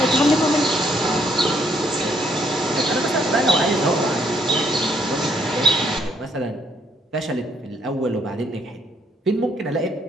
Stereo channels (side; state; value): both; normal; correlation 0.69